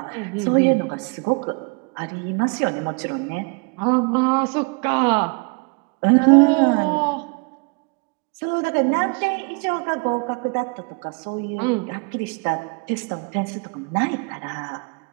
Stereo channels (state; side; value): quieter; left; 34.3 dB